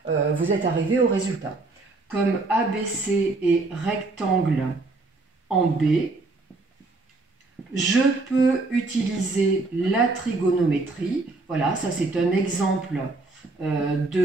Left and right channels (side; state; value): left; quieter; 3.5 dB